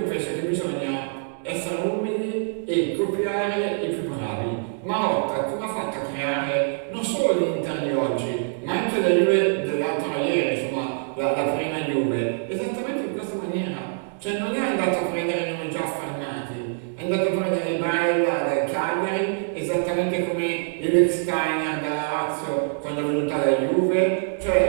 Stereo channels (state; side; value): silent; left; digital silence